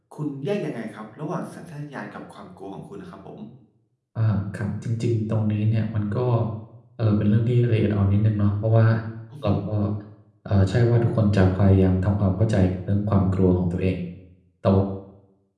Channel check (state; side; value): identical; both; correlation 1.00